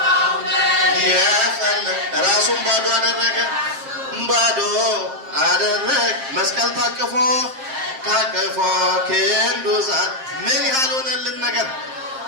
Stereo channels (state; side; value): late; left; 7.5 ms